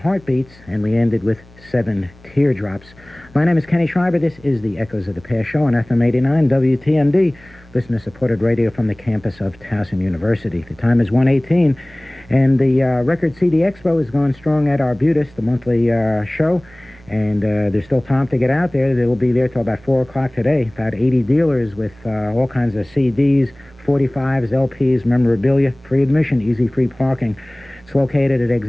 and we ended with 7 Teardrops. My name is Kenny Schreiber. This is the Echoes of the Past show on FM 89 WTMD, listener-supported radio from the campus of Towson University. The time is 1:18, and the Record CD Expo is going strong at Arbutus, the monthly show, and there's still time to get out there. They will be there till about 4 o'clock today. About 80 dealers with all kinds of CDs, 45s, LPs, memorabilia, free admission, easy free parking. It's located at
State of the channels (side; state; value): right; noise; hum, 25 dB below the sound